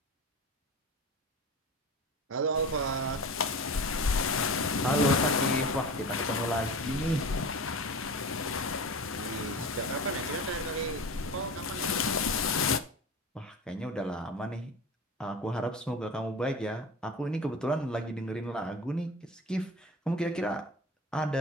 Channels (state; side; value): normal; both; correlation 0.32